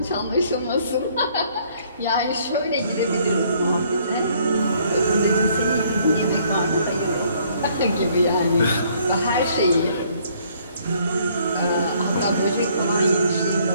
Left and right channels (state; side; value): inverted; both; correlation -0.63